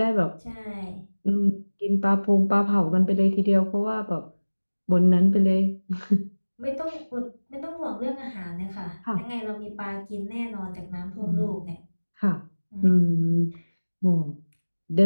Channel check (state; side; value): inverted; both; correlation -1.00